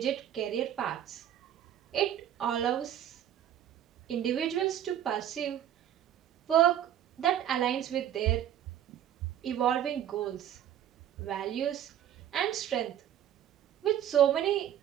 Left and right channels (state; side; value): quieter; left; 10.7 dB